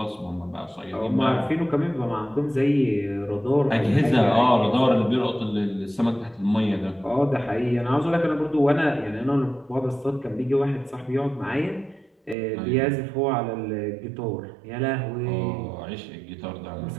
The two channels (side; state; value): left; drops out; at 12.4 s